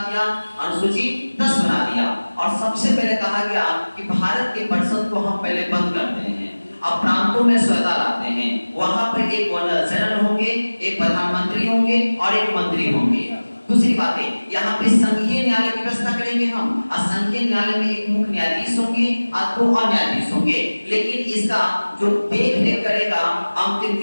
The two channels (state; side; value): inverted; both; correlation -1.00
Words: दिया, अनुसूची 10 बना दिया और सबसे पहले कहा गया कि भारत के परिषद को हम पहले बंद करते हैं, अब प्रांतों में स्वतंत्रता लाते हैं। वहां पर एक गवर्नर जनरल होंगे, एक प्रधानमंत्री होंगे और एक मंत्री होंगे। दूसरी बात है यहाँ पे संघीय न्यायालय की व्यवस्था करेंगे हम। संघीय न्यायालय में एक मुख्य न्यायाधीश होंगे और 2 और न्यायाधीश होंगे, लेकिन इसका जो देख रेख करेगा, अंतिम